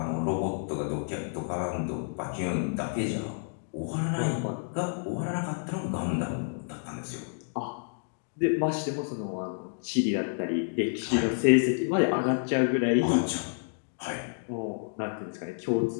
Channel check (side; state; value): right; silent; digital silence